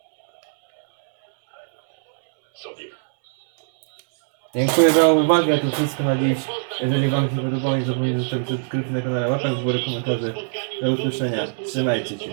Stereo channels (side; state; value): left; silent; digital silence